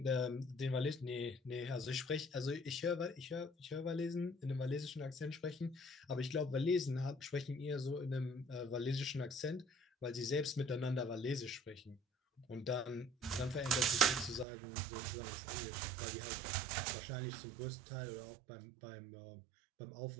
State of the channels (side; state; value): left; drops out; at 14.5 s